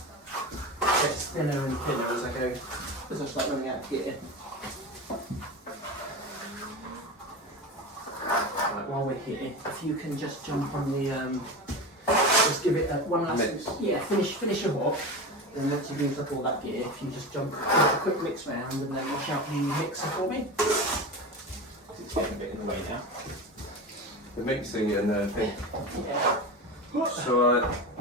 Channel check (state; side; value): normal; both; correlation 0.25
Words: it gets thinner and thinner as I go, as I start running out of gear. Right, while we're here, if you can just jump on the, just give it one last, Mix. yeah, finish your walk. Then once you've used up all that gear, if you just jump, give it a quick mix round and then wash out the mixer for me. It's getting a bit in the way now. The mixing and the thing. Yeah. So